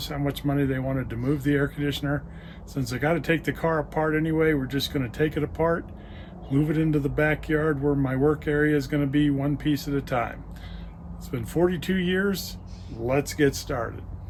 how much money they wanted to move the air conditioner. Since I got to take the car apart anyway, we're just going to take it apart, move it into the backyard where my work area is going to be, one piece at a time. It's been 42 years. Let's get started.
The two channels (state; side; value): identical; both; correlation 1.00